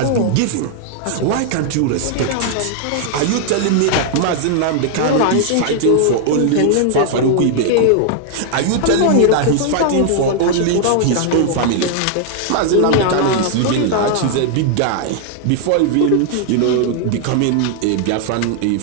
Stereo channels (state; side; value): different; both; correlation 0.00